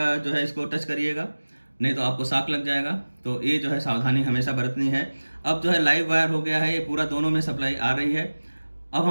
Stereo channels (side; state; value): both; inverted; correlation -1.00